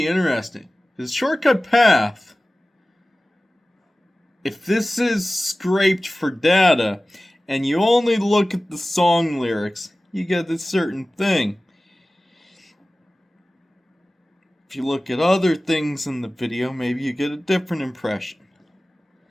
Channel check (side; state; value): both; normal; correlation 0.97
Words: interesting. This shortcut path, if this is scraped for data, and you only look at the song lyrics, you get this certain thing. If you look at other things in the video, maybe you get a different impression.